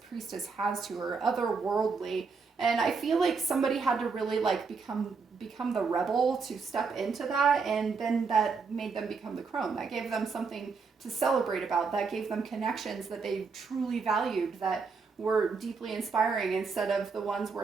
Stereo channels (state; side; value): quieter; left; 5.0 dB